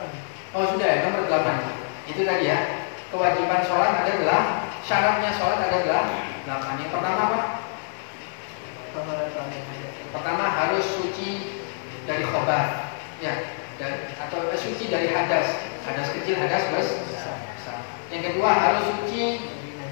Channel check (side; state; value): right; silent; 61 dB below the other